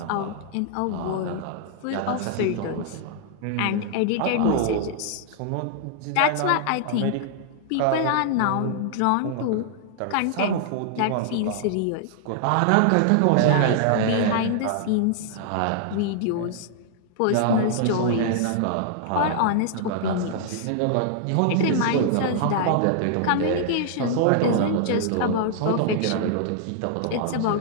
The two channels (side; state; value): both; different; correlation -0.01